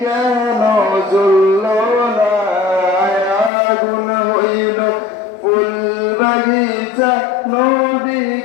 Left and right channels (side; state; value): right; drops out; at 3.5 s